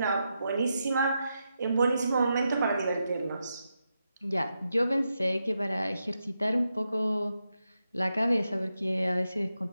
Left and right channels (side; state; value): both; inverted; correlation -0.86